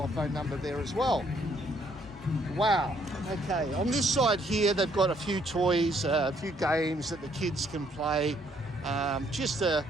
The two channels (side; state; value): both; normal; correlation 0.67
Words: phone number there as well. Wow. Okay, on this side here, they've got a few toys, a few games that the kids can play. Just a